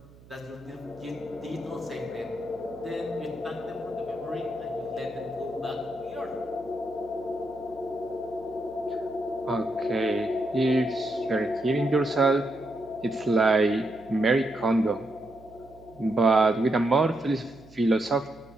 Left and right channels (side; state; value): right; noise; hum, 23 dB below the sound